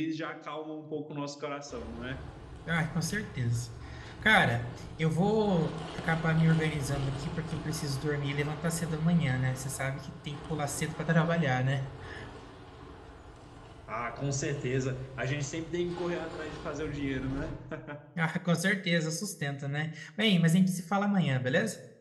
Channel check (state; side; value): identical; both; correlation 1.00